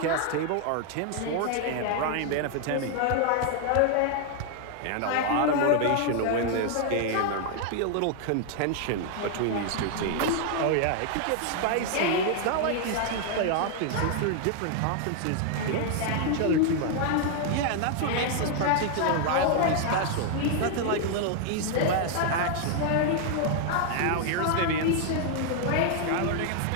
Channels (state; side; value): different; both; correlation 0.00